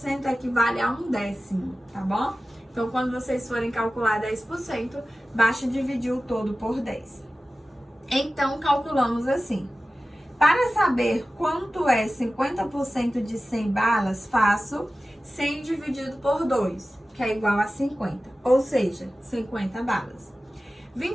equivale a 1/10, tá bom? Então, quando vocês forem calcular 10%, basta dividir o todo por 10. Então, calculamos assim. Para saber quanto é 50% de 100 balas, faço 100 dividido por 2, que é igual a 50, ou seja, 50 balas.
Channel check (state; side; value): normal; both; correlation 0.95